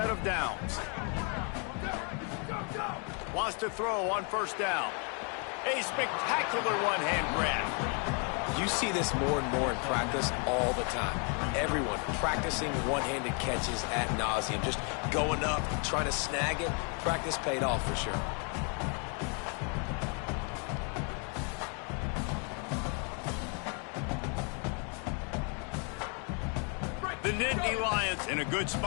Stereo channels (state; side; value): quieter; right; 37.9 dB